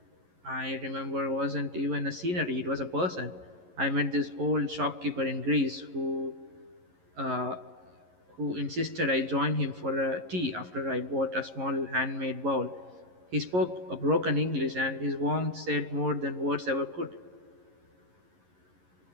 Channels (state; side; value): late; left; 11 ms